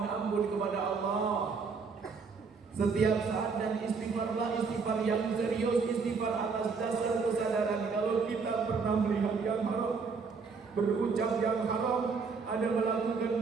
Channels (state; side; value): quieter; left; 5.0 dB